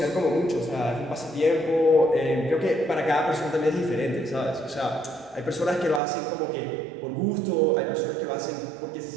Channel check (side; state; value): left; drops out; at 6.0 s